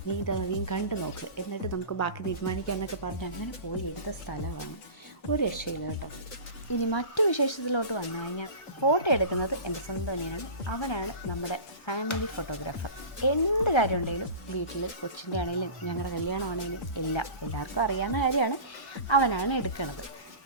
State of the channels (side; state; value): right; late; 1.3 ms